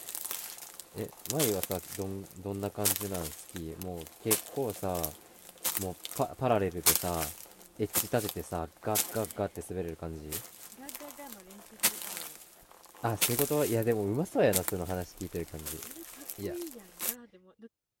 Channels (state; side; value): identical; both; correlation 1.00